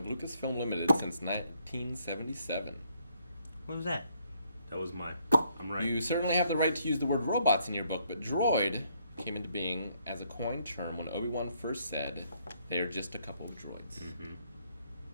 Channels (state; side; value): inverted; both; correlation -0.70